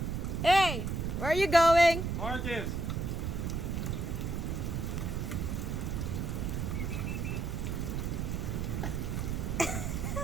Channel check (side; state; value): right; noise; rumble, 1 dB below the sound